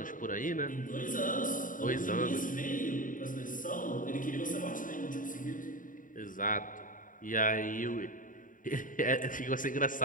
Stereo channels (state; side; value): late; right; 0.39 ms